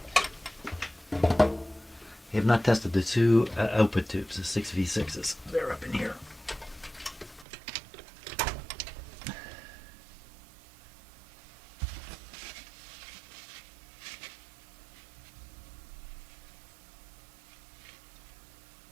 I have not tested the two output tubes, the 6V6s. They're up in here.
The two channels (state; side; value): drops out; left; at 7.5 s